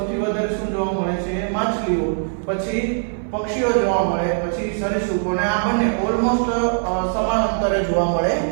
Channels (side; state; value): left; silent; 60 dB below the other